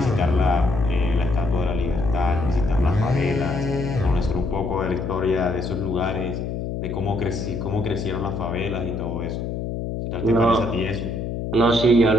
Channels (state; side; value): noise; left; hum, 4 dB below the sound